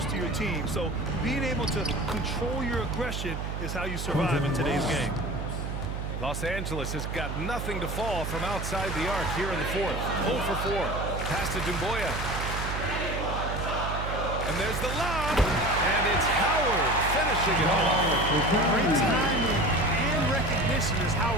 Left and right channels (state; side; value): noise; right; hum, 4 dB below the sound